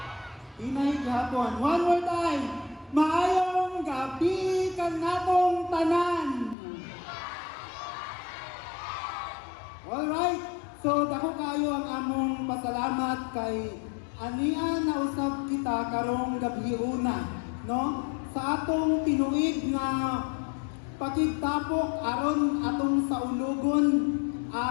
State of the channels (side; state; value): right; drops out; at 6.6 s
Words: Inay gihapon. One more time. Maayong gabi kanatong tanan. Alright. So dako kayo ang among pasalamat kay ania na usab kita karong gabi una, no? Sa atong tinuig nga pakigtapok aron atong saulogon,